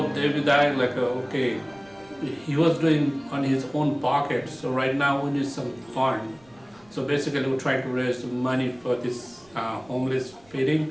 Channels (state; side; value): noise; right; rumble, 29 dB below the sound